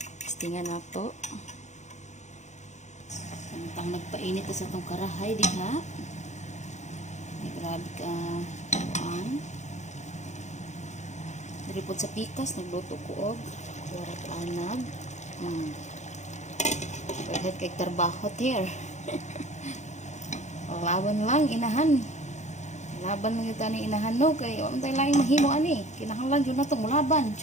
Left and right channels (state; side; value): late; right; 0.34 ms